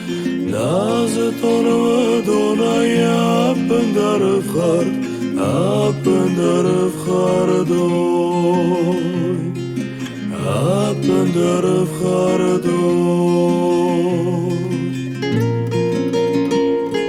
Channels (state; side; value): identical; both; correlation 1.00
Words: نازتون و دونای اپن در افخار دوی اپن در افخار دوی